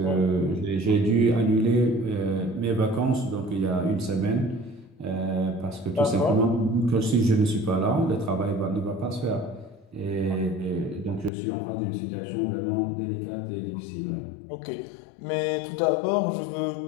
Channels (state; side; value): drops out; right; at 11.3 s